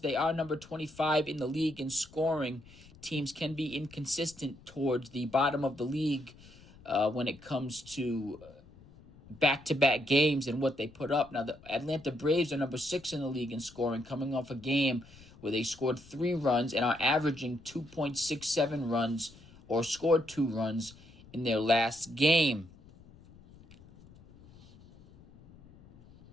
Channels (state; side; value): noise; left; rumble, 23 dB below the sound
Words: are number 25 in the league in scoring. Teams can be inconsistent towards the bottom of the league when it comes to back-to-back games and what they put up. Now, the Atlanta Braves are number 6 in the league in scoring, coming off a game where they scored 3 runs and are averaging 2.67 runs or scored 2 runs in their last game.